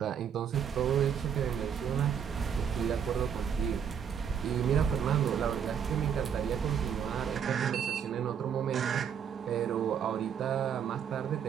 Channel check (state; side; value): quieter; left; 7.9 dB